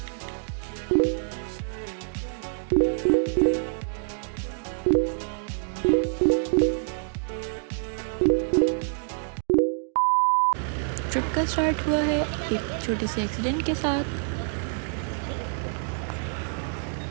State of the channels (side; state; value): left; silent; 56 dB below the other